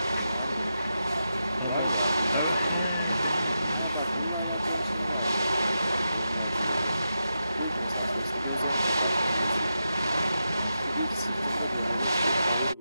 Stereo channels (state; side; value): inverted; both; correlation -0.88